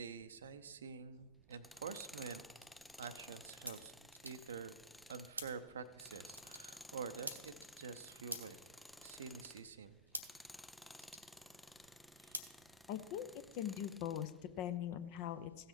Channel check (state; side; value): noise; right; rumble, 22 dB below the sound